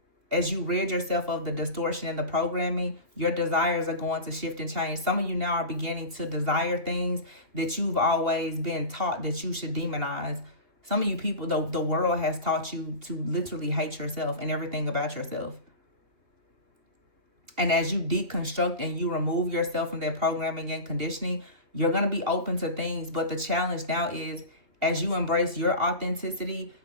As you rid yourself of the distortion and the programming, your desires are going to shift and change. Some of you now are beginning to desire things that you've always been taught that you should demonize. Some of you people, the world has taught you to literally hate yourself and everything about yourself. And as you deconstruct and you remove yourself from that programming and conditioning, you're going to be open to things. But the challenge now is, as you embrace your authenticity,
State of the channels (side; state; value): left; late; 2.9 ms